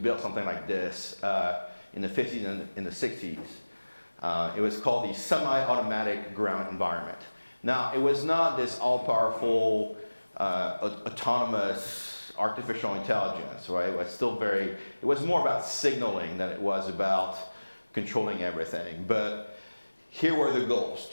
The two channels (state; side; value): inverted; both; correlation -1.00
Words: something like this in the 50s and in the 60s. It was called the Semi-Automatic Ground Environment. Now, it was not this all-powerful, autonomous artificial intelligence, right? It was more about signaling than it was about controlling everything. But here were the goals: